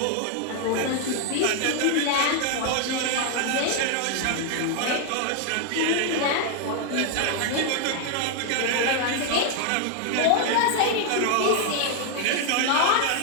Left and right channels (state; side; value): different; both; correlation 0.00